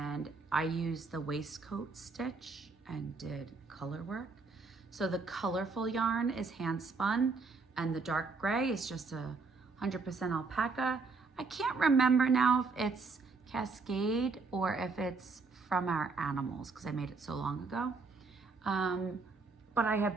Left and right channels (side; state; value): left; quieter; 4.3 dB